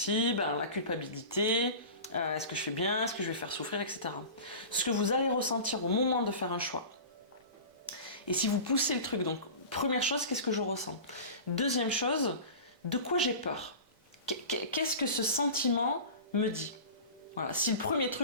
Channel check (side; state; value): left; late; 3.6 ms